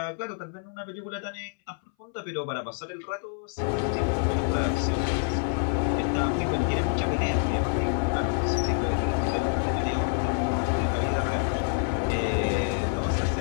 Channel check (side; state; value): right; silent; 58 dB below the other